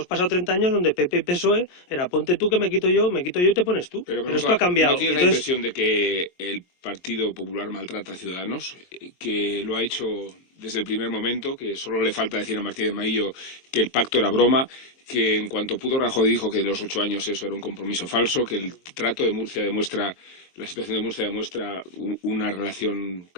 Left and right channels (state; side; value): late; right; 23 ms